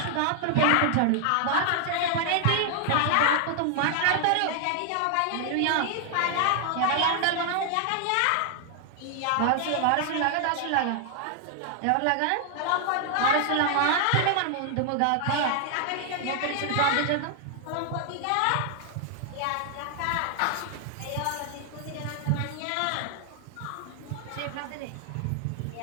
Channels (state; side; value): different; both; correlation 0.00